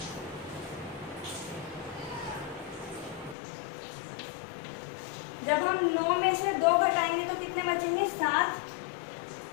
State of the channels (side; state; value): right; drops out; at 3.4 s